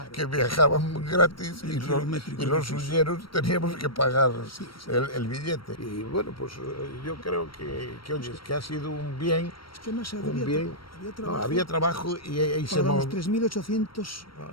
que viajaban gratis, y los huyeros teníamos que pagar el billete. Y bueno, pues yo creo que ha sido un bien. Es que más había trabajo y se los 3.800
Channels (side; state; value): right; late; 0.74 ms